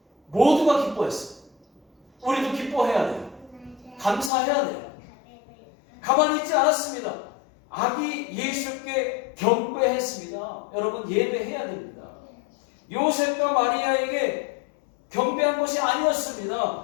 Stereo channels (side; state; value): right; drops out; at 4.3 s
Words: 모두가 기뻐했어요. 우리도 기뻐해야 돼요. 감사해야 돼요. 가만히 있지 않았습니다. 아기 예수께 경배했습니다. 여러분 예배해야 됩니다. 요셉과 마리아에게 경배한 것이